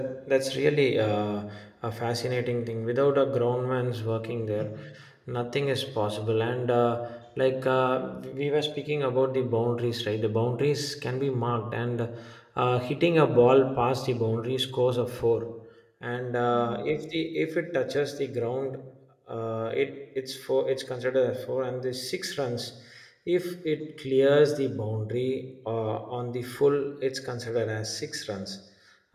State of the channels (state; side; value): identical; both; correlation 1.00